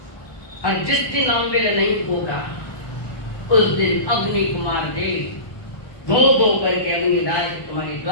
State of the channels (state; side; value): late; right; 1.2 ms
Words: और जिस दिन अम्बिल नहीं होगा उस दिन अग्नि कुमार देव धो धो करके अग्निराज तुम्हारी